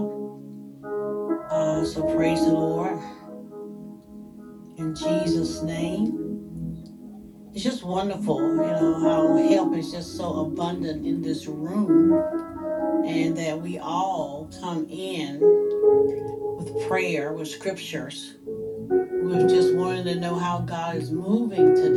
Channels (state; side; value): identical; both; correlation 1.00